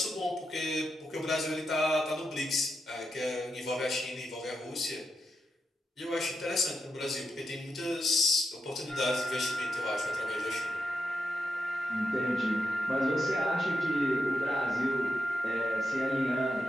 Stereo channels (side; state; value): both; normal; correlation 0.86